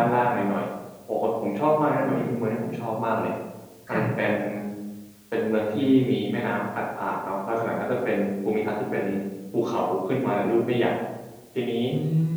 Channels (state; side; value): identical; both; correlation 1.00